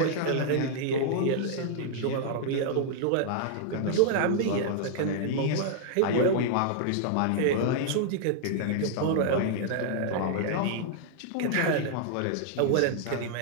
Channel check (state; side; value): different; both; correlation -0.01